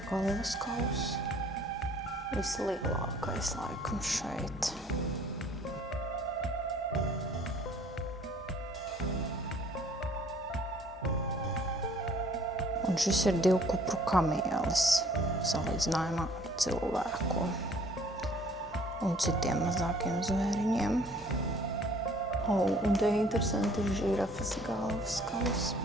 galvas kauss. Vislielākais laikam šeit. Un šis ir 2 kupru kamielis, salīdzinājumā ar cilvēku un citiem mazākiem zvēriņiem. Un te interesanti ir žirafas galvas kauss,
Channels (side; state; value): both; normal; correlation 0.56